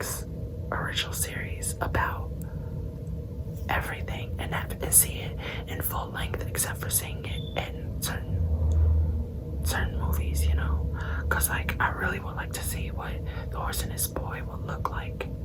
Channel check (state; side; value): identical; both; correlation 1.00